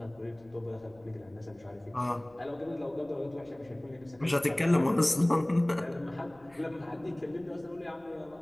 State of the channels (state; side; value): noise; left; rumble, 28 dB below the sound